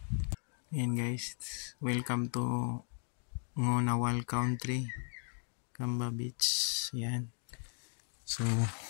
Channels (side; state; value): right; silent; 54 dB below the other